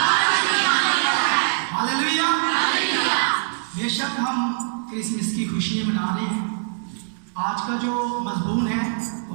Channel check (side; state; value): left; silent; digital silence